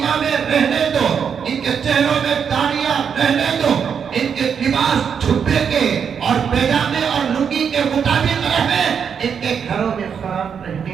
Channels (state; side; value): quieter; left; 7.1 dB